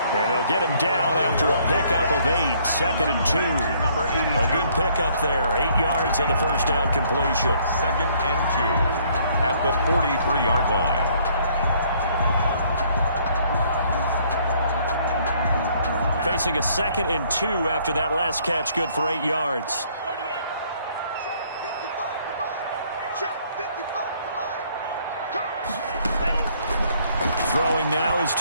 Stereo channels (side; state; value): both; inverted; correlation -0.64